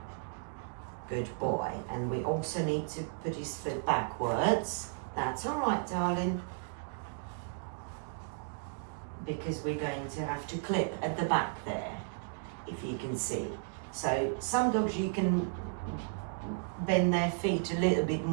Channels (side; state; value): left; silent; digital silence